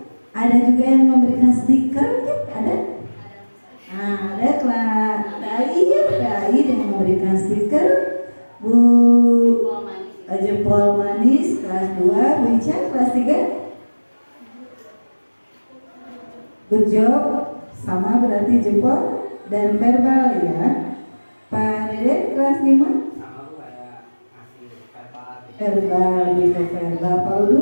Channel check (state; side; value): inverted; both; correlation -1.00